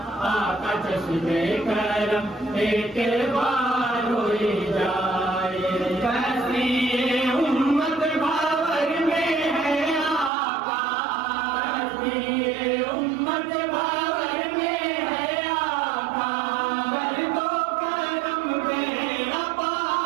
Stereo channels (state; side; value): drops out; left; at 10.3 s